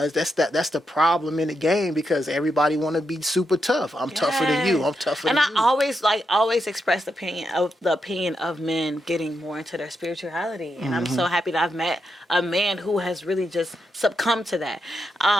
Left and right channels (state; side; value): normal; both; correlation 0.83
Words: that's the problem in the game because everybody want to be super tough. I'm tougher than you. I'm tougher than you. And I always express the opinion of men getting more into their spirituality. And I'm so happy that I've met a man who has really just succumbed to that.